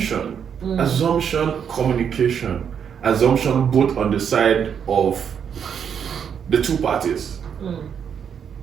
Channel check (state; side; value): quieter; left; 7.7 dB